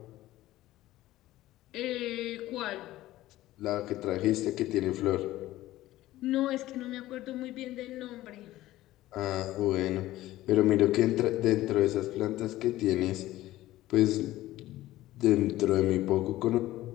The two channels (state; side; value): quieter; right; 15.8 dB